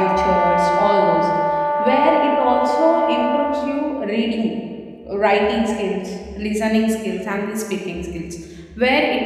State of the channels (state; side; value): identical; both; correlation 1.00